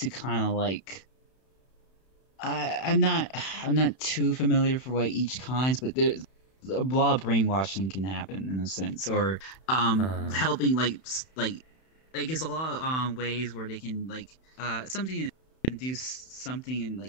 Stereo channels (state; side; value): late; right; 31 ms